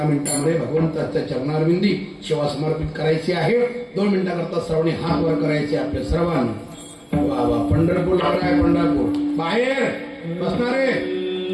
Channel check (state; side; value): identical; both; correlation 1.00